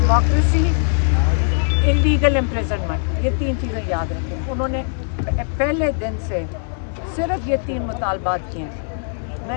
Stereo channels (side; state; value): right; silent; digital silence